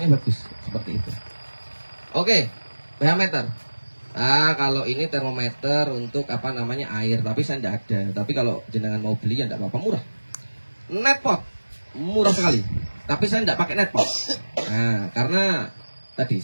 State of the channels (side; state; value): both; inverted; correlation -1.00